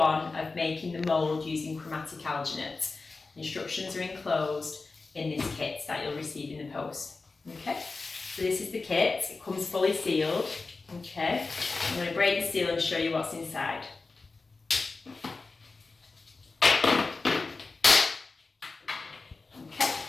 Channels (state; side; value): quieter; right; 3.9 dB